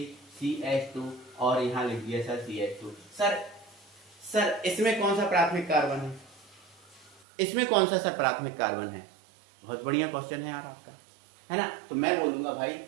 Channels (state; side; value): drops out; left; at 7.2 s